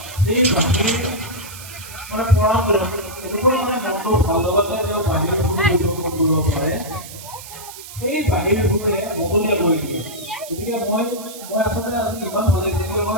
সেই বাঁহীৰ মানে পৰম্পৰা এনেকুৱা মানে মনটো ভাল লগাতে তেওঁ বাঁহীৰ পৰিৱেশন কৰিব পাৰে, সেই বাঁহীৰ সুৰে মহলীয়া কৰি দিয়ে। গতিকে মই আচলতে আজি ইমান ভাল লাগিছে,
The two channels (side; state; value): right; noise; hiss, 14 dB below the sound